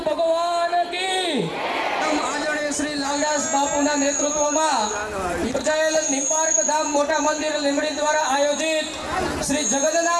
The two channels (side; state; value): both; identical; correlation 1.00